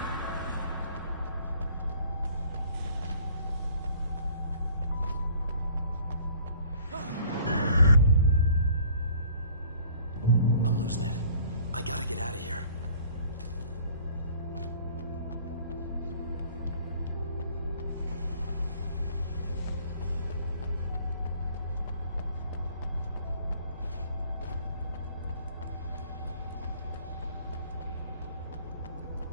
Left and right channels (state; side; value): inverted; both; correlation -0.54